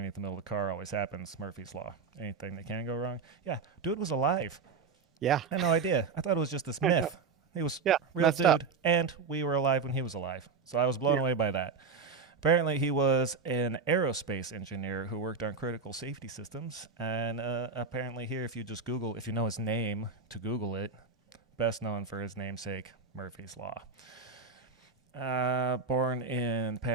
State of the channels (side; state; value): left; quieter; 5.1 dB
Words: the middle of the car. Always happens. Murphy's Law. Anything that can go wrong. Yeah, dude was alive. Yeah. I had no idea. I thought it was just this myth. He was real dude, up. and we were alive when he was alive. So I was blown away by that. Apparently, he was an aerospace engineer who worked on critical safety systems. And apparently here, if you just Google, if you know his name to Google it, best known for his namesake, Murphy's Law. Born in